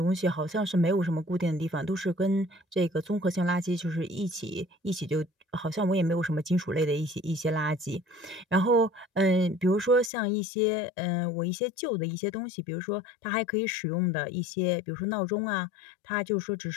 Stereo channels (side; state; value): right; drops out; at 10.1 s